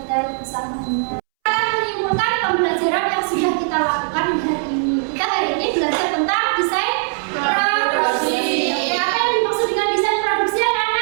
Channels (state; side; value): silent; left; 66 dB below the other